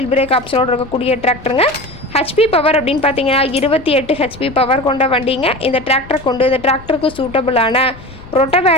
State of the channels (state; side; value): noise; left; rumble, 19 dB below the sound